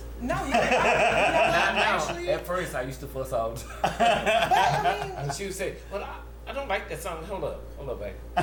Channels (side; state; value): both; identical; correlation 1.00